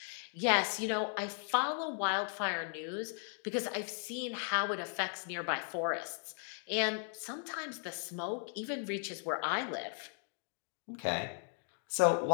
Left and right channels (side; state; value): right; silent; 53 dB below the other